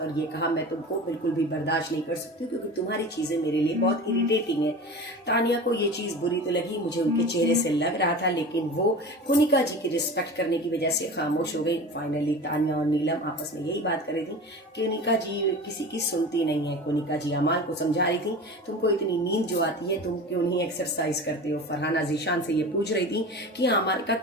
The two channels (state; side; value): normal; both; correlation 0.34